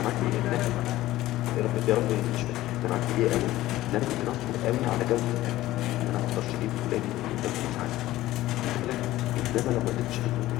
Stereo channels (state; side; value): quieter; right; 15.9 dB